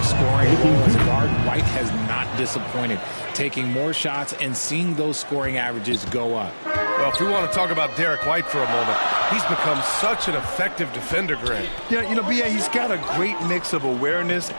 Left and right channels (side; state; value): both; inverted; correlation -1.00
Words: scoring role as guard, White has not disappointed, taking more shots and seeing those scoring averages go up. Well, if we want to talk about Derek White for a moment, he's become such an effective defender, Grant. Yeah, you know, BA, he's got a great mix of awareness